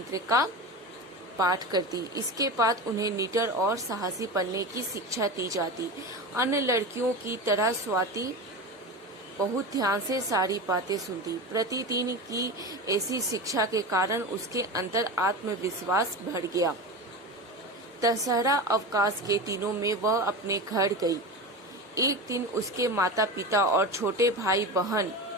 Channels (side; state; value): both; normal; correlation 0.26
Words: का पाठ करती। इसके बाद उन्हें निडर और साहसी बनने की शिक्षा दी जाती। अन्य लड़कियों की तरह स्वाति बहुत ध्यान से सारी बातें सुनती। प्रतिदिन की ऐसी शिक्षा के कारण उसके अंदर आत्मविश्वास बढ़ गया। दशहरा अवकाश के दिनों में वह अपने घर गई। एक दिन उसके माता पिता और छोटे भाई बहन